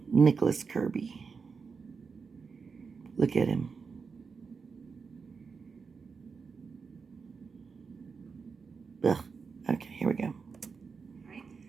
Nicholas Kirby. Look at him. Ugh. Okay, here we go. All right.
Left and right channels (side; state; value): left; quieter; 5.3 dB